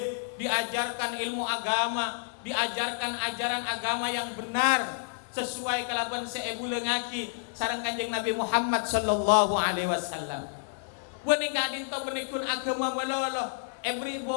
diajarkan ilmu agama, diajarkan ajaran agama yang benar sesuai kelaban seebu lengaki sareng Kanjeng Nabi Muhammad sallallahu alaihi wasallam. Beuning Kak Dinto menikun agama melolo. Beri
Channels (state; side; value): silent; right; digital silence